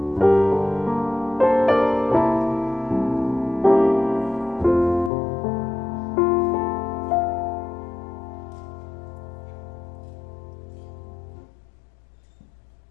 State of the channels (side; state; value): right; drops out; at 5.1 s